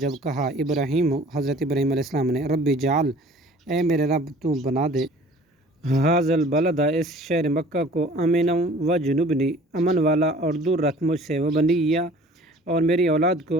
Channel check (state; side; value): normal; both; correlation 0.49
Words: جب کہا ابراہیم، حضرت ابراہیم علیہ السلام نے، ربی جعل، اے میرے رب تو بنا دے، ھذا البلد، اس شہر مکہ کو، آمنا وجنبنی، امن والا اور دور رکھ مجھ سے، وبنیہ، اور میری اولاد